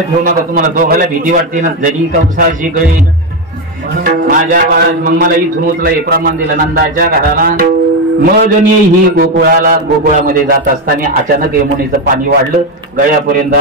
ठेवू नका. तुम्हाला दोघाला भीती वाटते ना जरी कवसाची गळी माझ्या बाळा. मग मला इथून उचला हे प्रमाण दिलं नंदाच्या घराला. मग ही गोकुळामध्ये जात असताना अचानक यमुनेचं पाणी वाढलं. गळ्यापर्यंत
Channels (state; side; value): normal; both; correlation 0.10